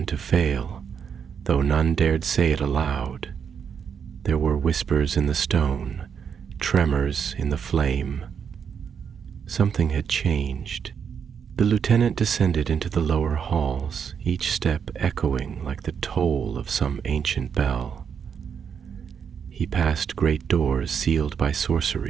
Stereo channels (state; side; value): quieter; left; 7.2 dB